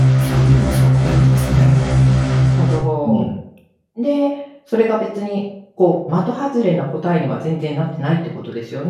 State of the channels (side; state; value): both; identical; correlation 1.00